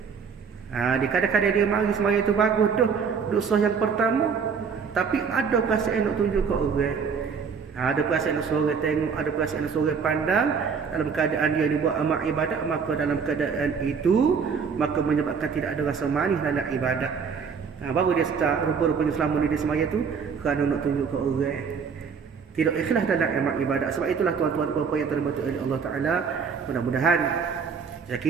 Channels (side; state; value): left; quieter; 6.0 dB